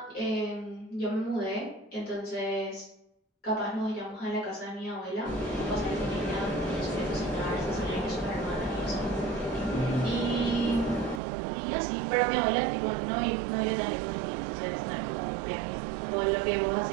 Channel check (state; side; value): drops out; left; at 11.2 s